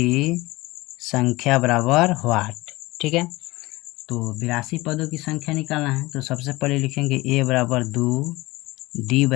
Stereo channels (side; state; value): right; quieter; 20.6 dB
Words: संख्या बराबर व्हाट। ठीक है, तो 82 पदों की संख्या निकालना है तो सबसे पहले लिखेंगे a बराबर 2, d